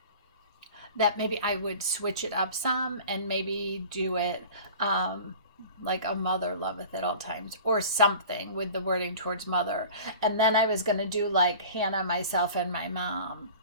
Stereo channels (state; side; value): inverted; both; correlation -0.42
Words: maybe I would switch it up some and maybe do it like A Mother Loveth at All Times or something with the wording towards mother. And then I was going to do like Hannah, myself, and my mom,